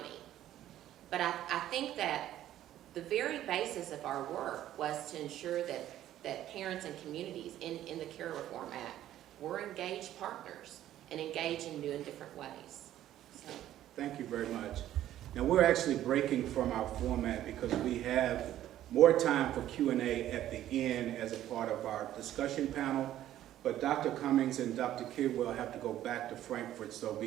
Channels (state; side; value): quieter; left; 12.6 dB